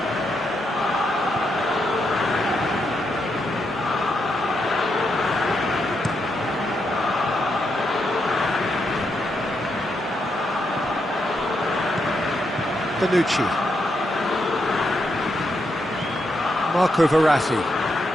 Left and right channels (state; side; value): normal; both; correlation 0.81